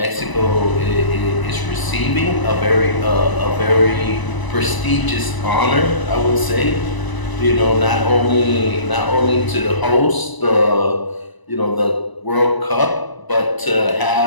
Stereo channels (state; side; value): late; right; 1.0 ms